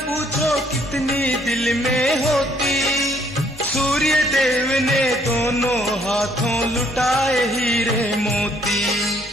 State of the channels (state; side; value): normal; both; correlation 0.65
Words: कितनी दिल में होती, सूर्य देव ने दोनों हाथों लुटाए हीरे मोती।